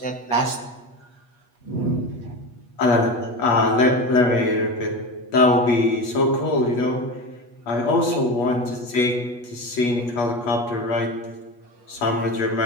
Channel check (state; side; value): late; right; 8.3 ms